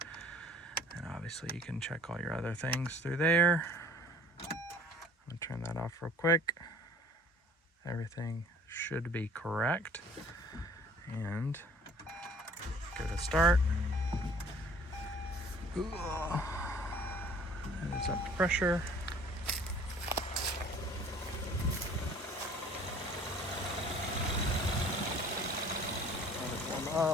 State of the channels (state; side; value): normal; both; correlation 0.51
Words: And obviously you can check all your other things through there. I'm gonna turn that off real quick. Everything should be correct. And go to start. And it's up to pressure. Let it warm